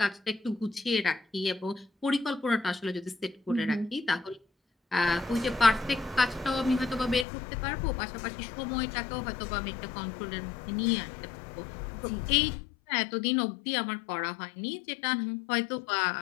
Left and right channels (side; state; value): right; drops out; at 7.2 s